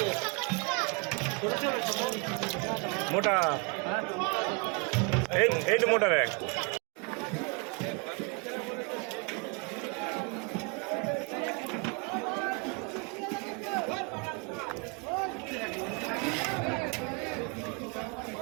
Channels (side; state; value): left; quieter; 31.4 dB